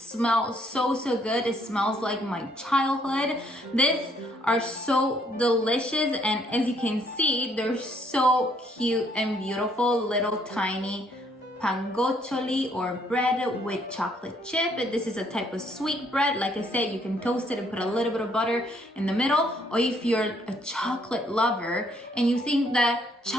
so good. It smells like my childhood. These are so delicious, and as you can see, they're so cute and beautiful, little tiny pangoccioli, or bread with chocolate chip. This is a type of sweet bread. Like I said, you can toast it and put a little bit of butter in the middle, or if you're a chocolate lover and you think that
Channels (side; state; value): both; normal; correlation 0.68